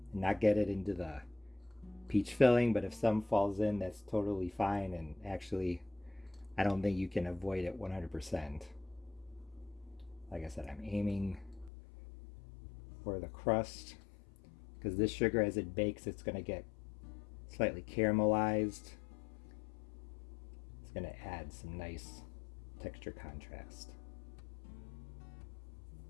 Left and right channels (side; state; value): right; drops out; at 11.7 s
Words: and not get it into the peach filling, but if some falls in, that's totally fine, and actually I don't think you can avoid it 100%. Like I said, I'm aiming for the crust because this sugar, as it bakes, it's going to get slightly caramelized. It's going to add some nice texture contrast.